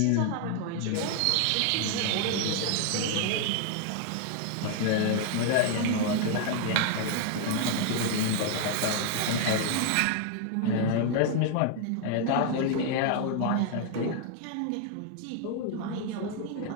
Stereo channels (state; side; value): different; both; correlation 0.00